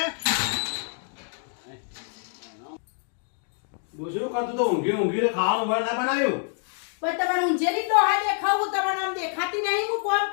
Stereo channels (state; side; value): silent; right; 61 dB below the other